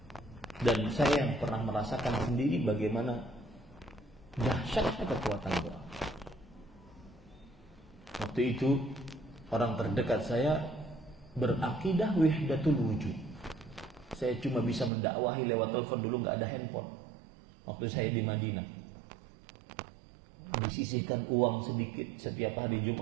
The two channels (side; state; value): left; drops out; at 14.9 s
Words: Dan saya yang pernah merasakan sendiri bagaimana dahsyatnya kekuatan doa. Waktu itu orang terdekat saya berakidah wahdatul wujud. Saya cuma bisa mendakwahi lewat telepon, dulu nggak ada handphone. Waktu saya di Madinah, disisihkan uang sedikit setiap hari